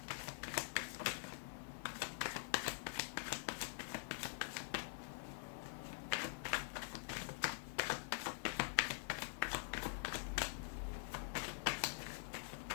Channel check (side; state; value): right; silent; digital silence